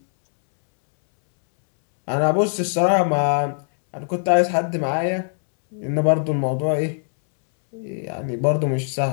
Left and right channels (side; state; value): right; silent; 65 dB below the other